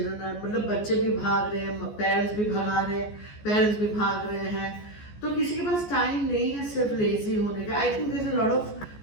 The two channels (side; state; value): right; late; 14 ms